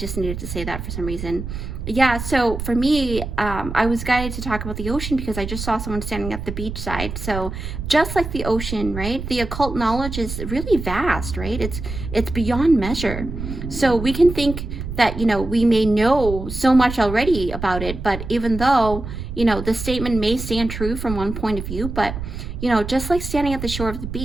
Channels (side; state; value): right; noise; rumble, 7 dB below the sound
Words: needed to say that for some reason. Yeah, so for me, I was guided to talk about the ocean because I just saw someone standing at the beach side. So just like the ocean, right? The occult knowledge is really vast, right? It's beyond measure. So we can think that, you know, we may know so much already about it, but even though, you know, the statement may stand true from one point of view, but, you know, just like standing at the shore of the